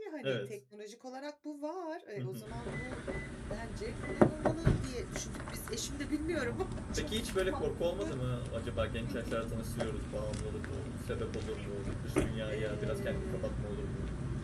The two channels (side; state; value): both; identical; correlation 1.00